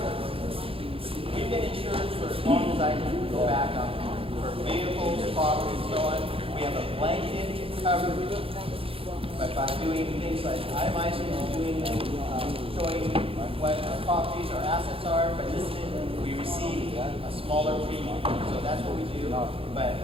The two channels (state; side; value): late; left; 0.27 ms